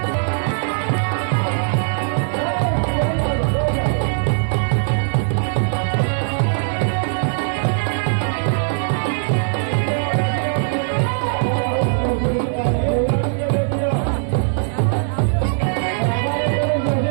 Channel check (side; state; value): left; silent; 57 dB below the other